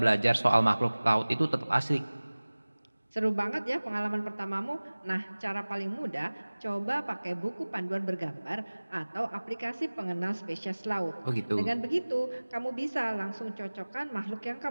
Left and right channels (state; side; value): inverted; both; correlation -1.00